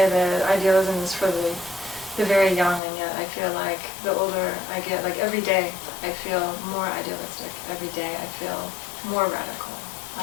that idealism is for the very young, and yet I feel like the older I get, like every day, I feel more idealistic. Every day I feel more radical.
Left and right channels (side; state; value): right; drops out; at 2.8 s